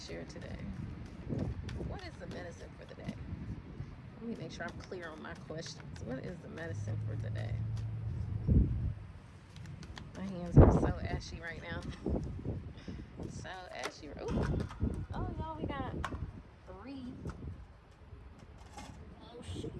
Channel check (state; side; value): identical; both; correlation 1.00